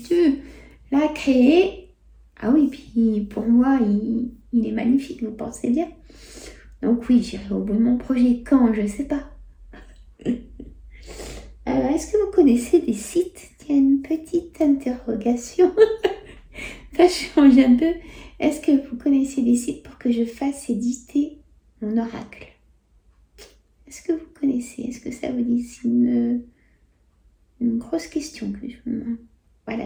tu l'as créé. Ah oui, puis pour moi, il est magnifique, vous pensez bien. Donc oui, j'irai au bout de mon projet quand, je ne sais pas. Est-ce que vous connaissez des sites? Tiens, une petite interrogation. Ça change un peu. Est-ce que vous connaissez des sites pour que je fasse éditer mon oracle? Est-ce que vous connaissez? Est-ce que ça vous dit? C'est une grosse question que je me...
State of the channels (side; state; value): both; identical; correlation 1.00